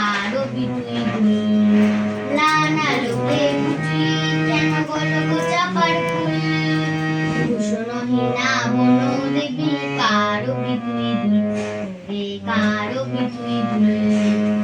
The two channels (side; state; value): both; identical; correlation 1.00